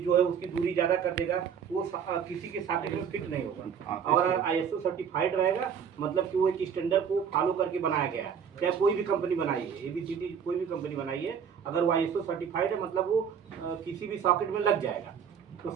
है उसकी दूरी ज्यादा कर देगा, वो किसी के सॉकेट में फिट नहीं होगा। हाँ, और अगर ISO सर्टिफाइड रहेगा मतलब कि वो एक स्टैंडर्ड को फॉलो करके बनाया गया है। चाहे कोई भी कंपनी बनाई है, ABCD कोई भी कंपनी बनाई है, अगर वो ISO सर्टिफाइड है मतलब वो किसी भी सॉकेट में लग जाएगा। तो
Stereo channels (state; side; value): quieter; left; 7.5 dB